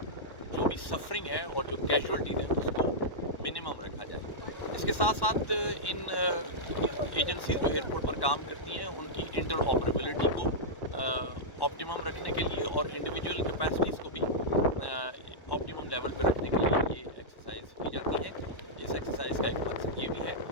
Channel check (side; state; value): right; late; 1.1 ms